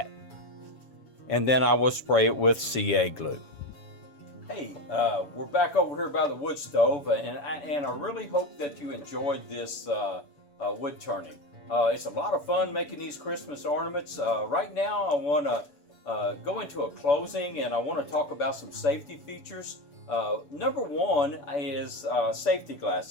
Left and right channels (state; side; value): late; right; 7.3 ms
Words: And then I will spray it with CA glue. Hey, we're back over here by the wood stove, and I really hope that you enjoyed this wood turning. It's a lot of fun making these Christmas ornaments. Right now I want to go into a closing, and I want to talk about some safety features. Number one is safety